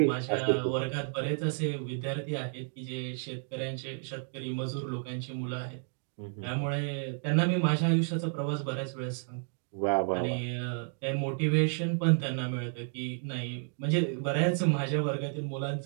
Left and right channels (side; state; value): left; silent; 57 dB below the other